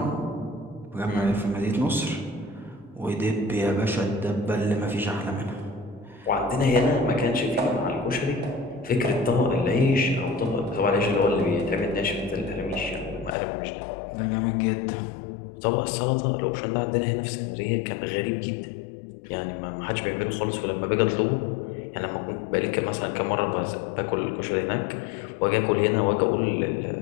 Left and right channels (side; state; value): right; drops out; at 13.4 s